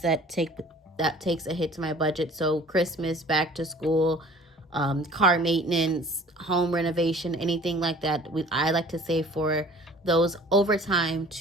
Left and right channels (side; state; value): both; normal; correlation 0.48